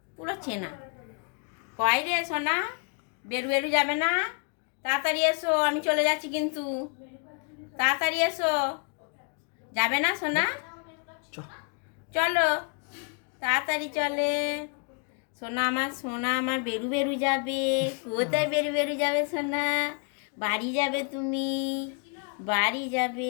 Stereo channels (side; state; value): right; quieter; 38.6 dB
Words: পুরো চেনা। কয় রে সোনা, বেরু বেরু যাবে না? তাড়াতাড়ি এসো, আমি চলে যাচ্ছি কিন্তু। তাড়াতাড়ি এসো। যাবে না সোনা? চ চলো, তাড়াতাড়ি চলে। সোনা আমার বেরু বেরু যাবে। কোথায় বেরু বেরু যাবে সোনা? বাড়ি যাবে তুমি, বাড়ি